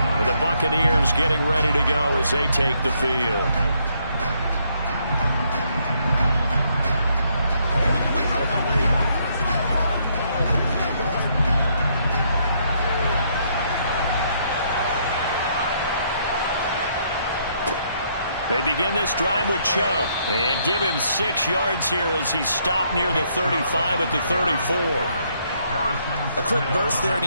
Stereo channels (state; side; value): inverted; both; correlation -0.71